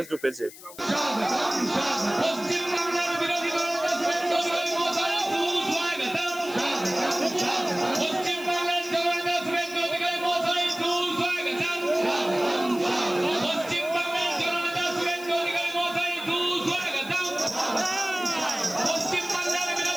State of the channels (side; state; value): left; noise; hiss, 17 dB below the sound